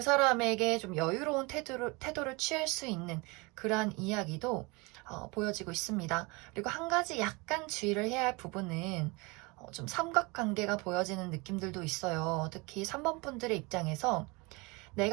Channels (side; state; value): left; quieter; 26.6 dB